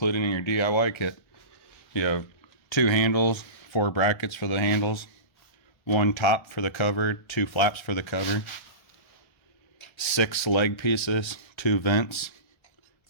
in your DIY kit. You have 2 handles, 4 brackets for the handles, 1 top for the cover, 2 flaps for the cover, 6 leg pieces, 2 vents,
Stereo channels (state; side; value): late; right; 1.3 ms